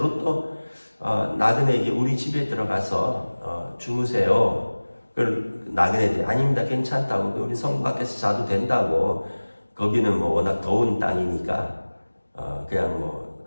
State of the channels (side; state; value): both; inverted; correlation -1.00